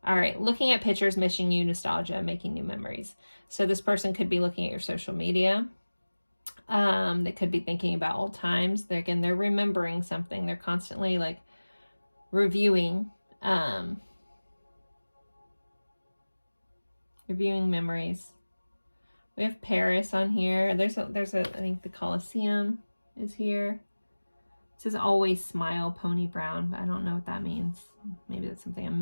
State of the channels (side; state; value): both; inverted; correlation -1.00